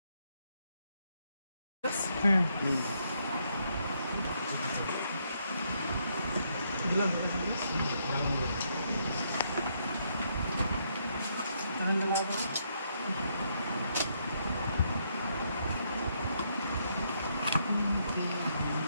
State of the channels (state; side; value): inverted; both; correlation -0.75